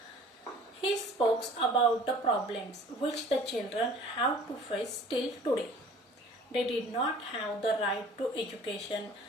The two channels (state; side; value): normal; both; correlation 0.49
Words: He spoke about the problems which the children have to face till today. They did not have the right to education.